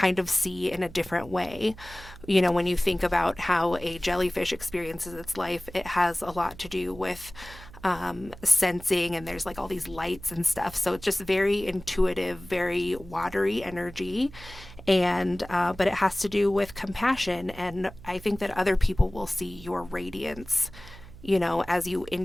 of see in a different way. When you think about how a jellyfish experiences its life, it has a lot to do with sensing, and there's like all these lights and stuff. So it's just very intuitive, very watery energy. And, but it has to do with compassion. And I think that other people will see your radiance, as you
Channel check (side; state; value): right; noise; hum, 18 dB below the sound